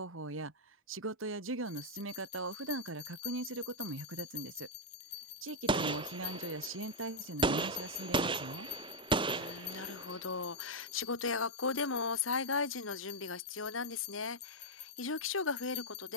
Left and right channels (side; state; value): both; normal; correlation -0.03